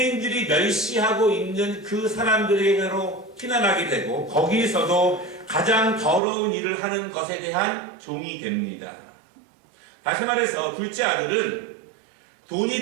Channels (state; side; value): drops out; left; at 6.2 s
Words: 멸시하고 있는 그 사람들에게로 피난하게 되고 거기서도 가장 더러운 일을 하는 것에 대한 종이 됩니다. 다시 말해서 둘째 아들은